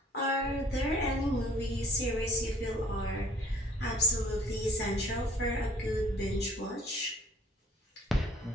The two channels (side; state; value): both; normal; correlation 0.55